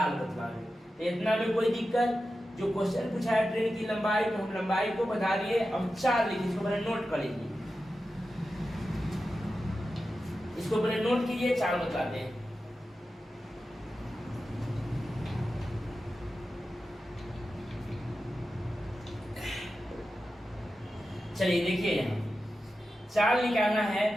बतलावे, तो इतना में कोई दिक्कत? जो क्वेश्चन पूछा है ट्रेन की लंबाई, तो हम लंबाई को बता दिए, अब चाल लिखिए, इसको पहले नोट कर लीजिए, इसको पहले नोट कीजिए, चाल बतलाते हैं। चलिए देखिए, यहाँ चाल निकालना है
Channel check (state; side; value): normal; both; correlation 0.92